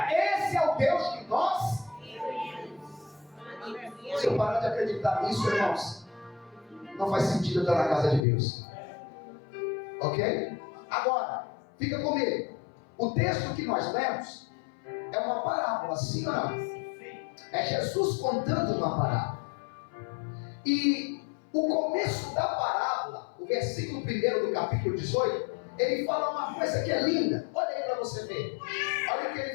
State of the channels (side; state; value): right; drops out; at 8.2 s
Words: Esse é o Deus que nós. Se eu parar de acreditar nisso, irmãos, não faz sentido eu estar na casa de Deus. Ok? Agora, fica comigo. O texto que nós lemos é uma parábola, sim ou não? É Jesus contando uma parábola. E o começo da parábola, o versículo 1 do capítulo 18, ele fala uma coisa que é linda. Olha aí para você ver. Olha o que